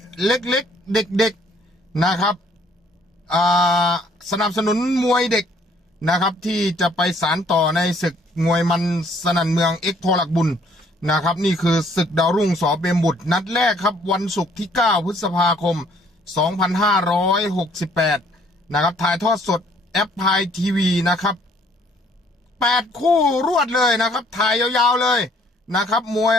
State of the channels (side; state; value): both; normal; correlation 0.62